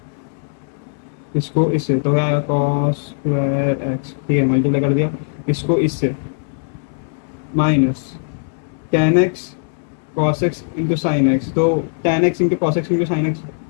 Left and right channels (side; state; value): right; silent; digital silence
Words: इसको इससे, तो क्या आएगा? cos²x, ठीक है, मल्टीप्लाई कर दिया। इसको इससे -10x cos x into sine x, तो 10x into cos x into sine x,